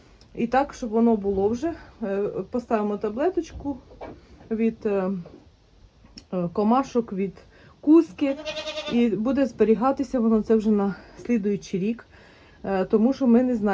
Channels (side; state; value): both; identical; correlation 1.00